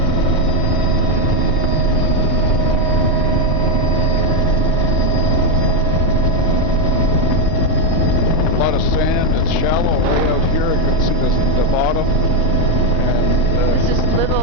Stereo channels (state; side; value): normal; both; correlation 0.05